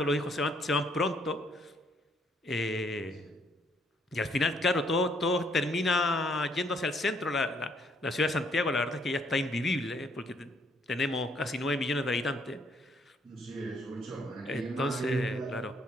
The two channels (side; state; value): both; normal; correlation 0.68